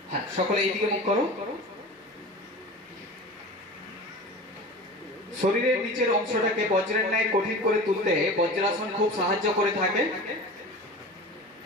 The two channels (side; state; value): both; normal; correlation 0.34